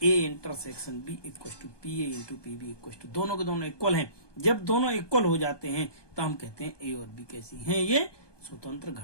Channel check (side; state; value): right; late; 1.2 ms